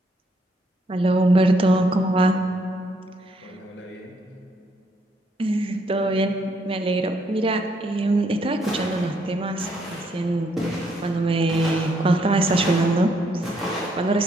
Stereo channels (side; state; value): both; normal; correlation 0.72